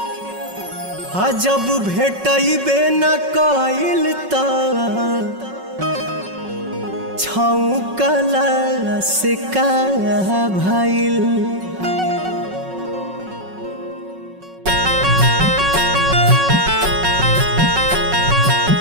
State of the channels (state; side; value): late; left; 5.4 ms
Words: जब भेटबे न कइल त छौकला से का भइल।